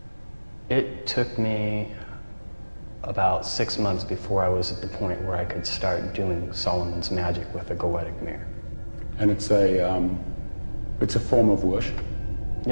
It took me about 6 months before I was at the point where I could start doing Solomon's magic with a goetic mirror. And it's a form of worship?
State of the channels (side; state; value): both; inverted; correlation -1.00